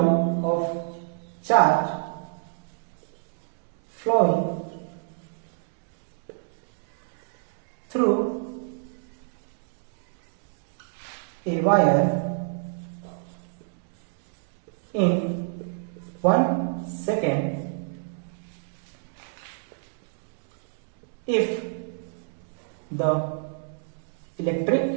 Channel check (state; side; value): silent; left; digital silence